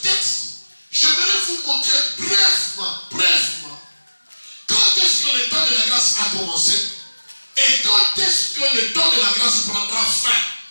texte, j'aimerais vous montrer brièvement, quand est-ce que le temps de la grâce a commencé et quand est-ce que le temps de la grâce prendra fin,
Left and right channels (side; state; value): both; inverted; correlation -1.00